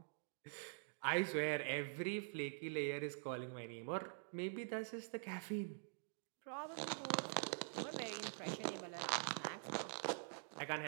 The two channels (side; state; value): left; silent; digital silence